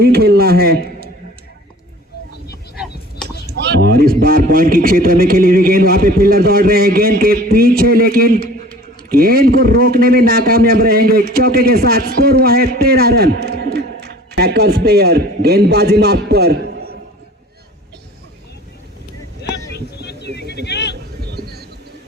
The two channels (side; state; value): both; normal; correlation 0.46